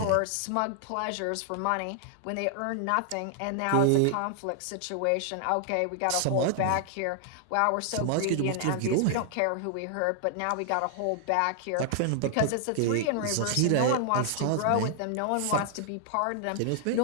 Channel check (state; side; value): different; both; correlation 0.00